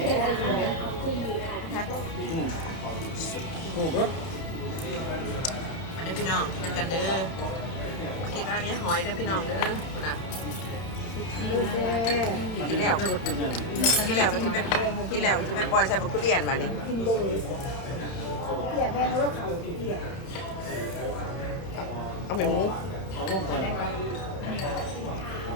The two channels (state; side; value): late; right; 31 ms